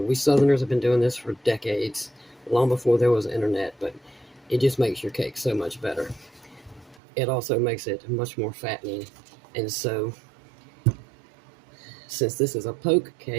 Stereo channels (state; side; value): drops out; left; at 7.0 s